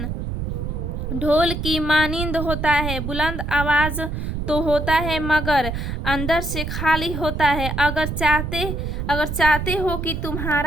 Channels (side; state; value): right; noise; rumble, 4 dB below the sound